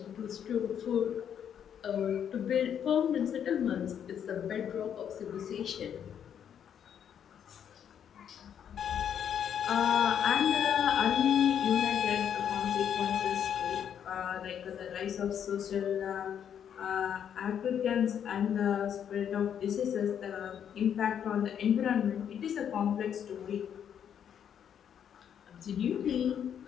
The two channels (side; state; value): right; quieter; 8.8 dB